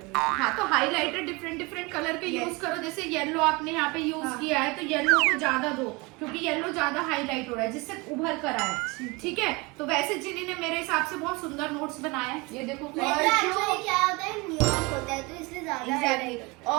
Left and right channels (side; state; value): left; quieter; 25.8 dB